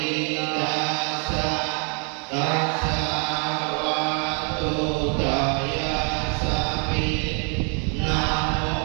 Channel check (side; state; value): left; quieter; 39.2 dB